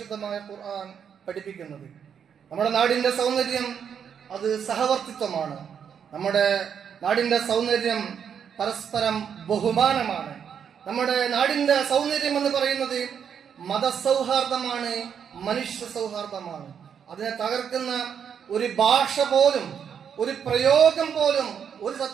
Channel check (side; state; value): left; quieter; 7.7 dB